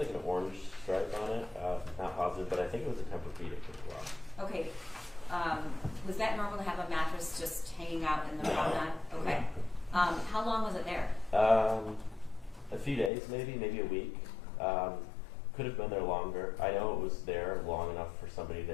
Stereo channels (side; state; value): right; drops out; at 13.1 s